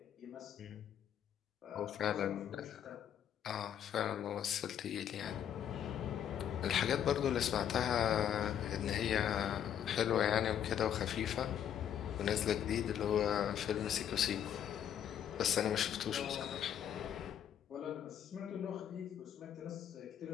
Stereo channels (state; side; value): quieter; right; 9.6 dB